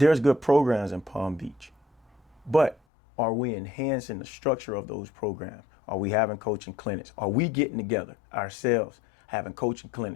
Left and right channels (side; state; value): right; drops out; at 2.8 s